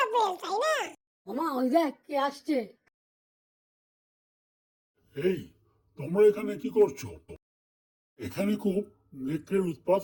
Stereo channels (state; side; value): identical; both; correlation 1.00